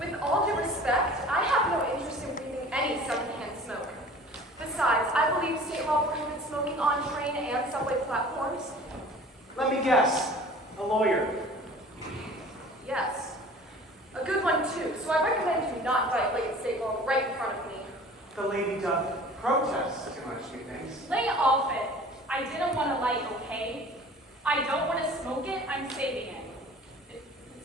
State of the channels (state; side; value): normal; both; correlation 0.45